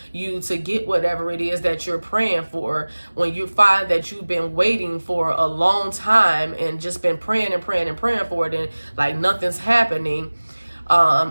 you to get whatever it is that you're praying for, when you find that you've been waiting for a long time and just been praying and praying and praying for it, and like nothing's happening,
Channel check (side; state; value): both; inverted; correlation -1.00